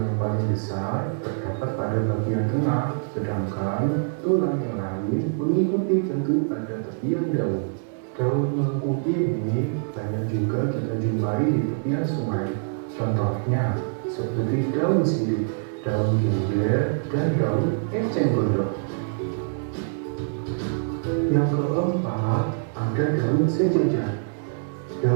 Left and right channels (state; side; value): silent; left; digital silence